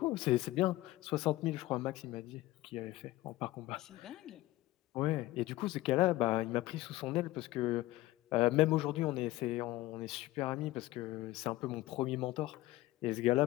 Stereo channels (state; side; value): quieter; right; 17.4 dB